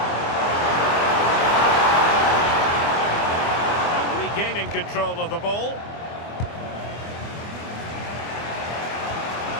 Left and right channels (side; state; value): right; late; 24 ms